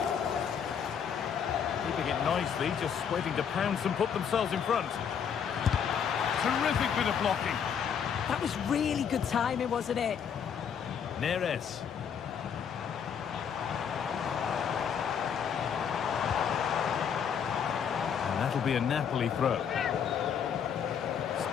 Keeping it nicely, just waiting to pounce and put themselves in front. Terrific bit of blocking. That was really good timing, wasn't it? Neres. And that'll be a Napoli throw.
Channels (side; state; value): right; quieter; 7.6 dB